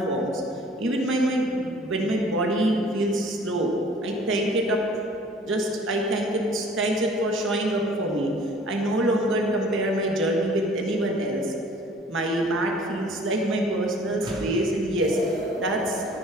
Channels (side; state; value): both; normal; correlation 0.51